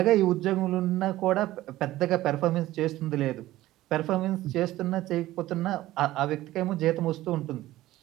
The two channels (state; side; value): quieter; left; 15.9 dB